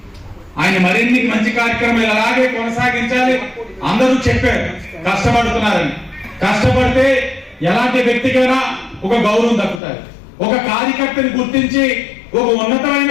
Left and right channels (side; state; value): right; drops out; at 9.8 s